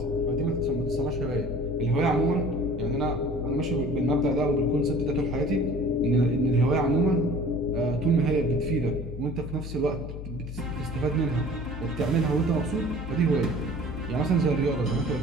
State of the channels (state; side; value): noise; left; hum, 8 dB below the sound